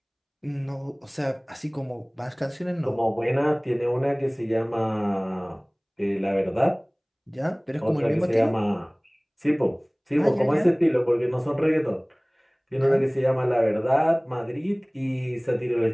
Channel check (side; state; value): both; identical; correlation 1.00